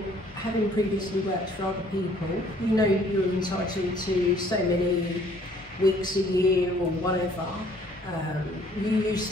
having previously worked for other people, you know you're entitled to so many weeks a year or whatever. You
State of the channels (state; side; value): normal; both; correlation 0.59